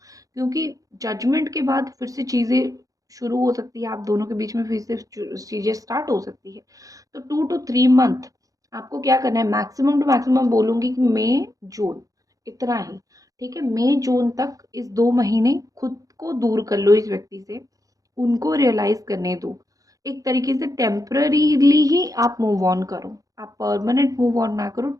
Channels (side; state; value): left; late; 0.17 ms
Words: क्योंकि जजमेंट के बाद फिर से चीज़ें शुरू हो सकती है। आप दोनों के बीच में फिर से चीज़ें स्टार्ट हो सकती है। तो 2 to 3 मंथ आपको क्या करना है, मैक्सिमम टू मैक्सिमम बोलूँगी कि मई जून इतना ही। ठीक है, मई जून तक इस 2 महीने खुद को दूर कर लो इस व्यक्ति से, उनको रियलाइज करने दो। एक तरीके से टेम्पररीली ही आप मूव ऑन करो, आप परमानेंट मूव ऑन ना करो,